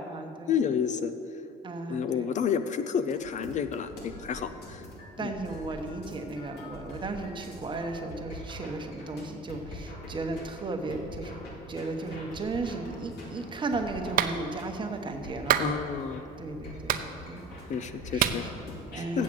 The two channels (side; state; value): both; normal; correlation 0.36